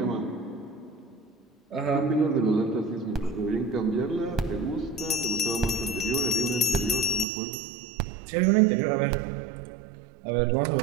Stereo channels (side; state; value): left; drops out; at 7.2 s